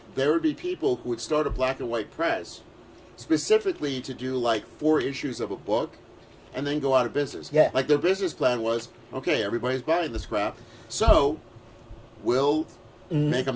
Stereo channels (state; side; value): identical; both; correlation 1.00